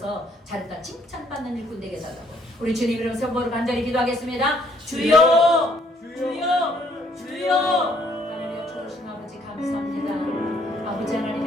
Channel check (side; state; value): both; normal; correlation 0.66